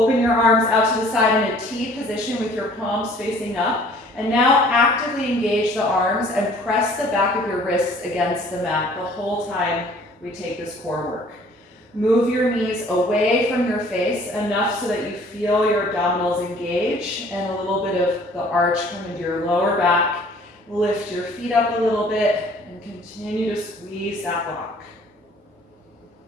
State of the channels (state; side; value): normal; both; correlation 0.54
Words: your arms out to the side in a T position with your palms facing up. And now actively engage the arms and press the back of your wrists against the mat the whole time we take this core work. Move your knees away from your face enough so that you feel your abdominals engage and a little bit of the arch come into your lower back. Lift your feet up a little bit and continue to squeeze that block.